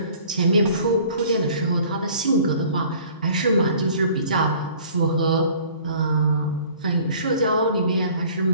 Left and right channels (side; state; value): both; inverted; correlation -0.51